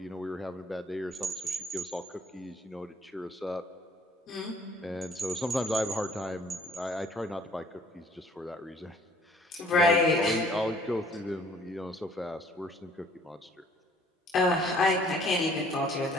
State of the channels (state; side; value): normal; both; correlation 0.57